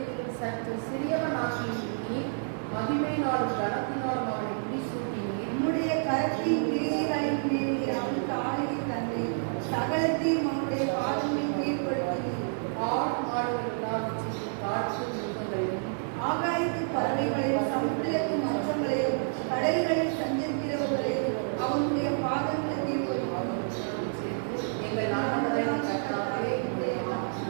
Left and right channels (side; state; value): left; silent; digital silence